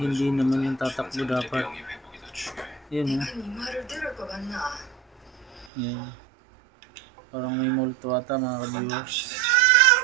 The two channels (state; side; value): drops out; left; at 5.7 s